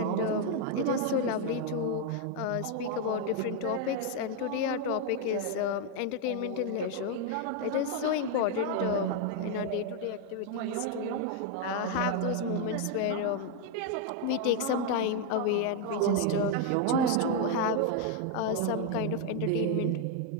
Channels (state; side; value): different; both; correlation 0.01